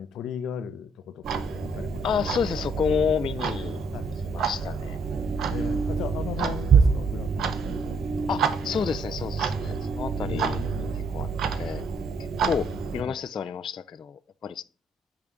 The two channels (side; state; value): both; normal; correlation 0.68